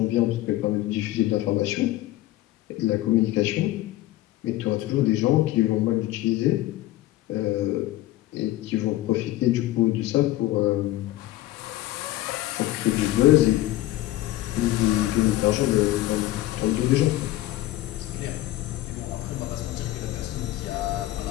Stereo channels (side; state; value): right; quieter; 15.9 dB